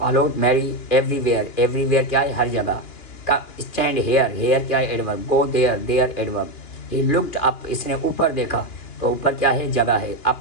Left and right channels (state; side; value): late; right; 2.7 ms